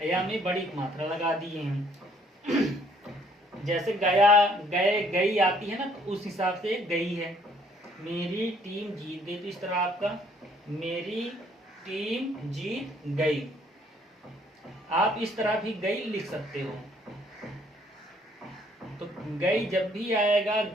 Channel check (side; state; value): both; normal; correlation 0.63